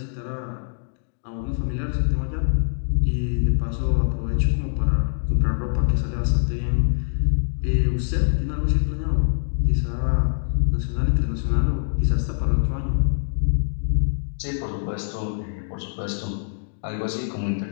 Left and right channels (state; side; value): silent; right; digital silence